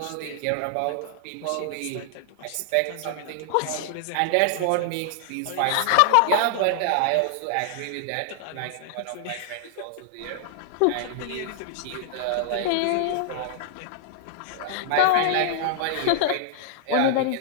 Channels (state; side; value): different; both; correlation 0.00